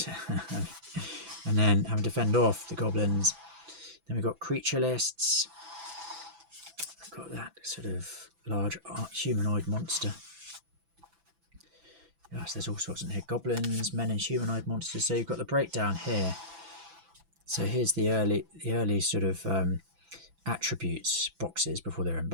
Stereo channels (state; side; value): late; left; 6.0 ms